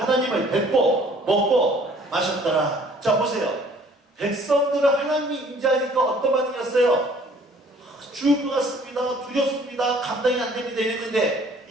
하나님을 뵙고 먹고 마셨더라. 자, 보세요. 백성들은 하나님이 임재하니까 어떤 반응이었어요? 죽을 것 같습니다. 두렵습니다. 감당이 안 됩니다. 이랬는데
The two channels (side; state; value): both; normal; correlation 0.56